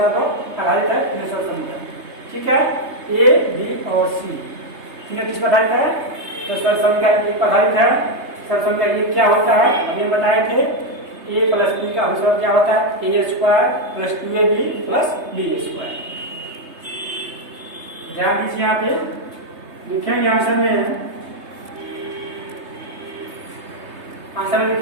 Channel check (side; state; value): left; late; 3.3 ms